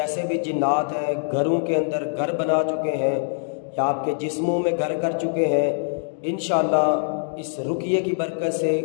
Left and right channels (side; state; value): right; silent; digital silence